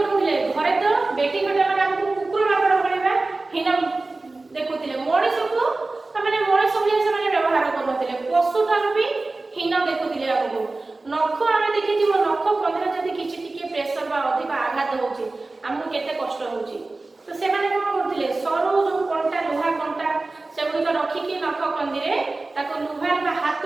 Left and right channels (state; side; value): quieter; left; 3.3 dB